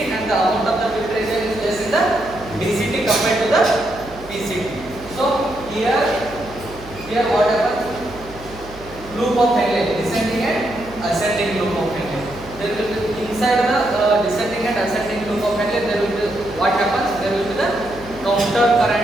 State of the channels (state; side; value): noise; right; hum, 18 dB below the sound